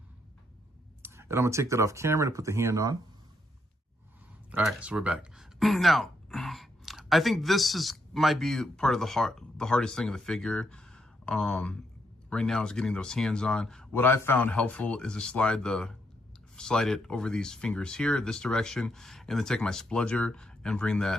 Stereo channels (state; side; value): normal; both; correlation 0.77